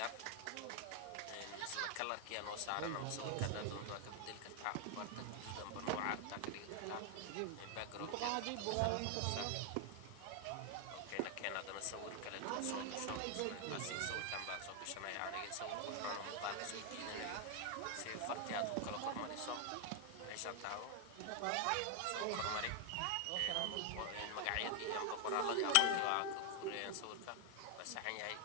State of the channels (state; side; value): different; both; correlation 0.00